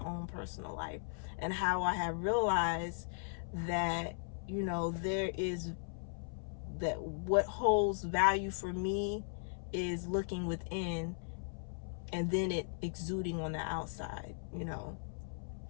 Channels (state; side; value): silent; right; 53 dB below the other